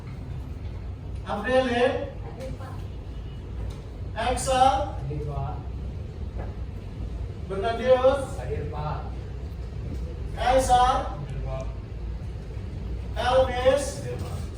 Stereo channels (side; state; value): both; identical; correlation 1.00